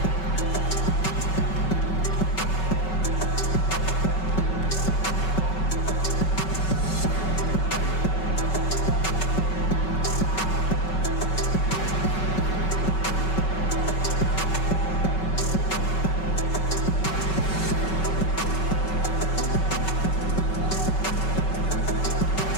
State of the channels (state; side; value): late; right; 5.3 ms